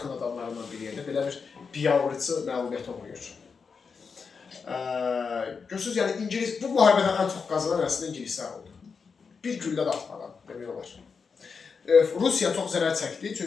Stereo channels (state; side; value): quieter; right; 5.4 dB